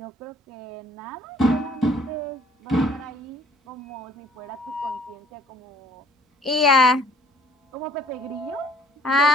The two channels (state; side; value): normal; both; correlation 0.57